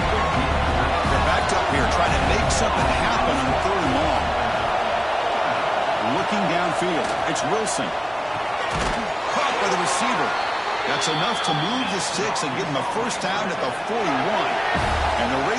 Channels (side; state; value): both; identical; correlation 1.00